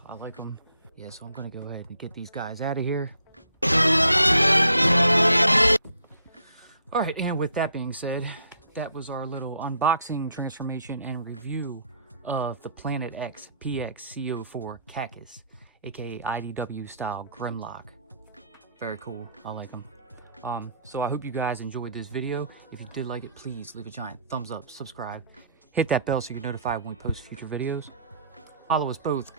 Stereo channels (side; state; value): both; inverted; correlation -0.65